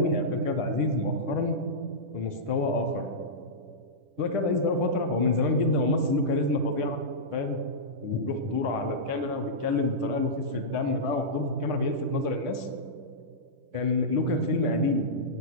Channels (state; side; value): late; left; 10 ms